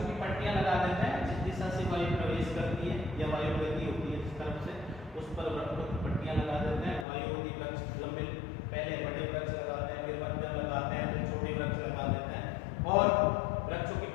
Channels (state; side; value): drops out; right; at 7.1 s